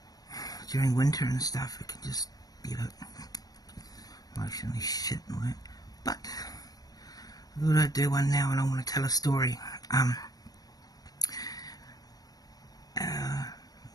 during winter and stuff. It can just be a bit emotionally shit and work. But I thought I'd do one now, and I want to tell a story about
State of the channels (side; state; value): right; late; 0.18 ms